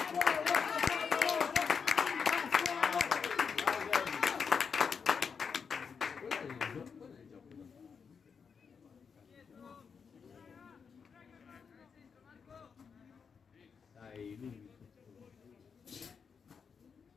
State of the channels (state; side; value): quieter; right; 6.1 dB